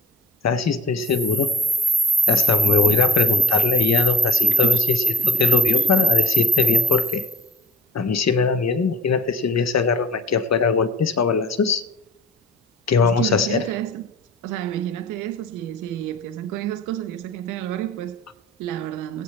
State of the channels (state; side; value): normal; both; correlation 0.45